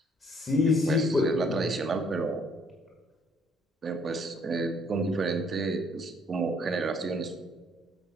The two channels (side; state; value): both; normal; correlation 0.64